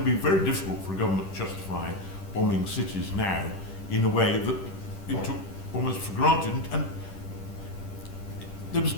be very difficult for a government to justify bombing cities now in a way that it took almost for granted, and there was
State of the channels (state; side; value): late; right; 10 ms